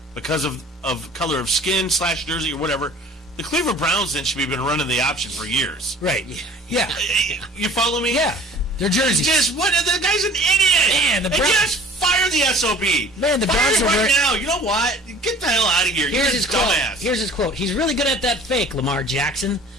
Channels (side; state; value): both; normal; correlation 0.48